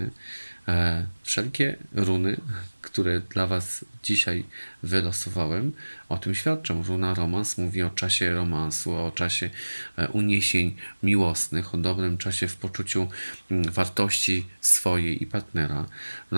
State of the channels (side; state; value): both; inverted; correlation -1.00